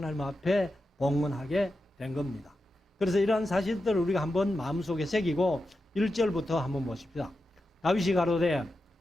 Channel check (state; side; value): normal; both; correlation 0.89